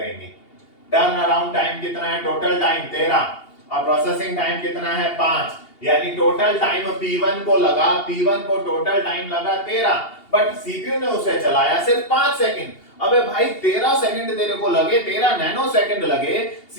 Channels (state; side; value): late; right; 2.8 ms